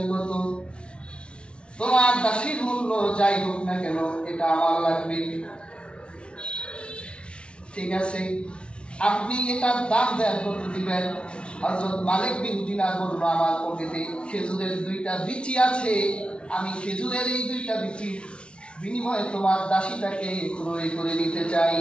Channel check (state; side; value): late; right; 0.058 ms